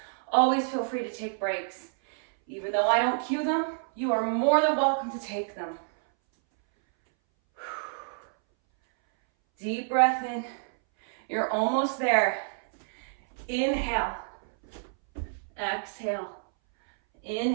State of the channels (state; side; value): silent; left; 59 dB below the other